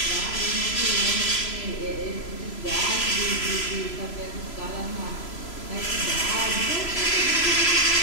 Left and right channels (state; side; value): late; right; 3.0 ms